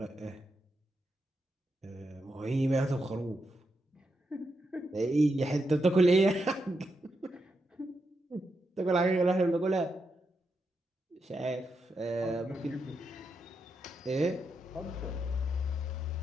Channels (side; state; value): both; normal; correlation 0.84